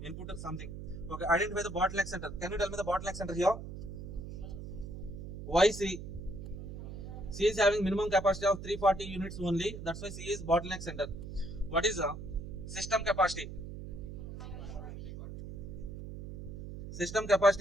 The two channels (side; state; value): right; noise; hum, 9 dB below the sound